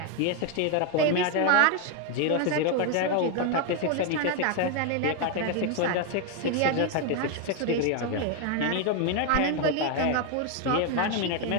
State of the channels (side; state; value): both; different; correlation 0.01